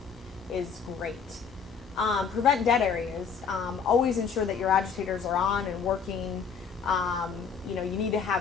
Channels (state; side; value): quieter; right; 6.2 dB